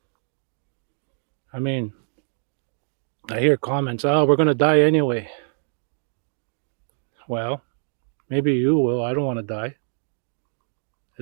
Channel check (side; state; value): left; silent; 61 dB below the other